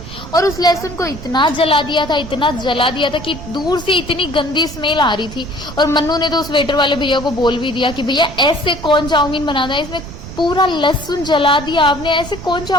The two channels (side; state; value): right; noise; rumble, 13 dB below the sound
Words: और उस लहसुन को इतना जला दिया था, इतना जला दिया था कि दूर से इतनी गंदी स्मेल आ रही थी। और मन्नू ने तो उस वेटर वाले भैया को बोल भी दिया कि भैया ऐसे कौन चाउमीन बनाता है, इसमें पूरा लहसुन जला दिया आपने, ऐसे कौन